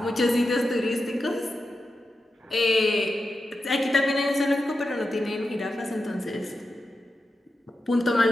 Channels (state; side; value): normal; both; correlation 0.89